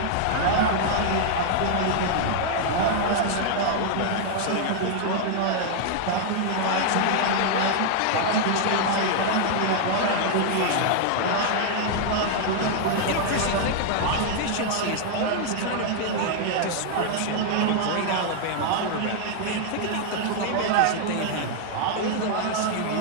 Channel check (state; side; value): different; both; correlation -0.01